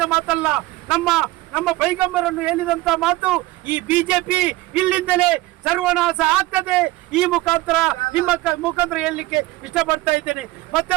ಮಾತಲ್ಲ, ನಮ್ಮ ಪೈಗಂಬರನ್ನು ಹೇಳಿದಂತ ಮಾತು. ಈ ಬಿಜೆಪಿ ಇಲ್ಲಿಂದಲೇ ಸರ್ವನಾಶ ಆಗ್ತದೆ. ಈ ಮುಖಾಂತರ ನಿಮ್ಮ ಮುಖಾಂತರ ಹೇಳಲಿಕ್ಕೆ ಇಷ್ಟಪಡ್ತಾ ಇದ್ದೇನೆ.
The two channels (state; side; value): quieter; left; 18.9 dB